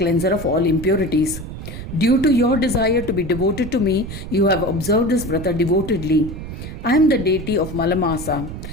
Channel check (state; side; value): noise; right; rumble, 9 dB below the sound